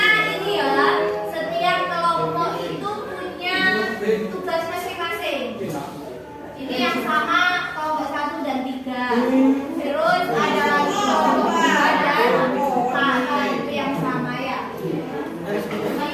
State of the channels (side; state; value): both; identical; correlation 1.00